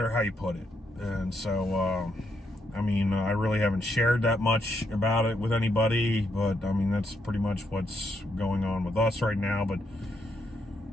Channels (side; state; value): both; normal; correlation 0.78